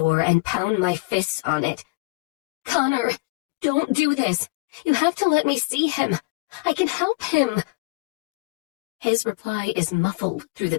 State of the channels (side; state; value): right; quieter; 26.1 dB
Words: and pound my fists on it. "Connor, don't do this. You have to let me see him. I can help him." His reply is muffled through the